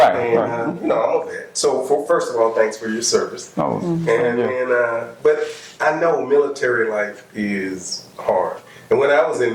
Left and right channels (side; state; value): both; identical; correlation 1.00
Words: And Right. you know, I'm a vet. So first of all, thanks for your service. Oh, But I know military life is hard. And when I was in